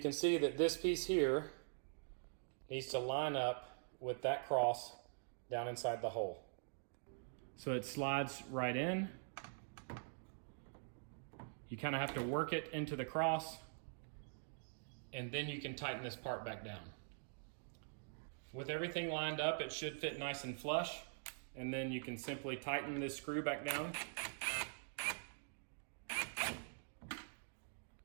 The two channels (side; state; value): left; silent; digital silence